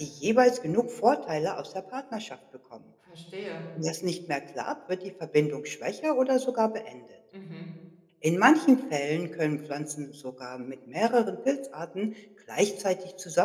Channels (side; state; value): both; identical; correlation 1.00